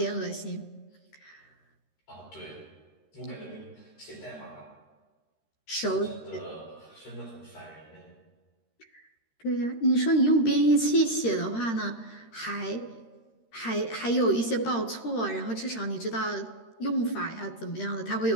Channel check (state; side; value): late; right; 13 ms